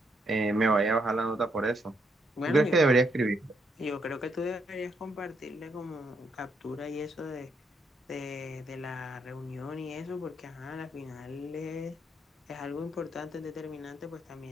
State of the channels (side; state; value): both; normal; correlation 0.76